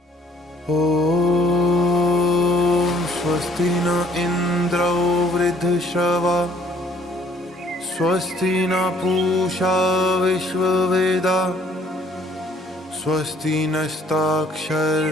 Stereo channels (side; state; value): both; normal; correlation 0.60